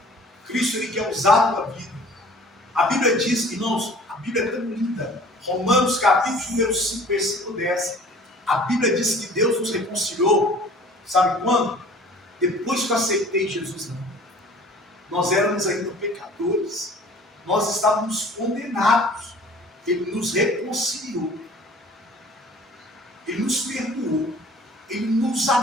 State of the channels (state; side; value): normal; both; correlation 0.49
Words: Cristo, Ele quer usar a tua vida. A Bíblia diz, irmãos, a Bíblia é tão linda. Romanos capítulo número 5, versículo 10. A Bíblia diz que Deus nos reconciliou. Sabe quando? Depois que eu aceitei Jesus. Não. Nós éramos ainda pecadores. Nós estávamos condenados. Ele nos reconciliou. Ele nos perdoou. Ele nos